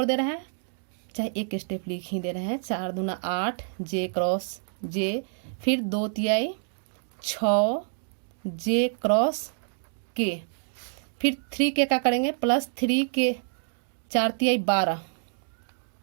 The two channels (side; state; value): left; silent; digital silence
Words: दे रहे हैं, चाहे एक स्टेप लिख ही दे रहे हैं। 4 दूना 8 जे क्रॉस जे, फिर 2 तिहाई 6 जे क्रॉस के, फिर 3 के का करेंगे प्लस 3 के 4 तिहाई 12,